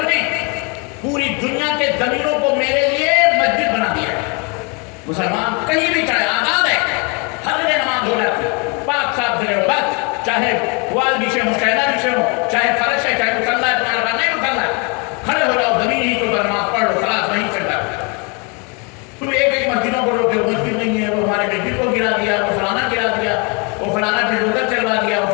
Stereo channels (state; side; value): quieter; right; 32.6 dB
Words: نے پوری دنیا کے زمینوں کو میرے لیے مسجد بنا دیا ہے۔ مسلمان کہیں بھی چاہے آزاد ہے، ہر جگہ نماز ہو جاتی ہے، پاک صاف جگہ ہو، بس چاہے وال بچھے ہوں، چائنا بچھے ہوں، چاہے فرش ہے، چاہے مصلی ہے، تمہارا بات نہیں مصلی، کھڑے ہو جاؤ، زمین ہی کے اوپر نماز پڑھ لو، خلاص وہیں چلتا ہے۔ تم ایک مسجدوں کو روکے ہو، مسجد نہیں ہے، وہ ہمارے مسجد کو گرا دیا، وہ فلانا گرا دیا، وہ فلانا بلڈوزر چلوا دیا، وہ